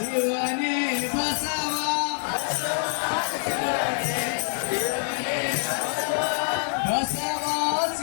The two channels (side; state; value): right; silent; digital silence